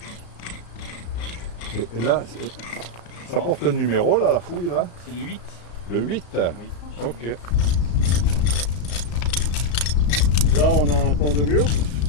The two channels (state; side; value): late; right; 34 ms